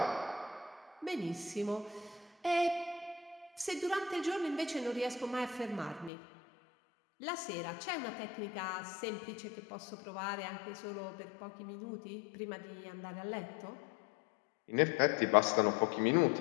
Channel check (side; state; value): right; drops out; at 6.1 s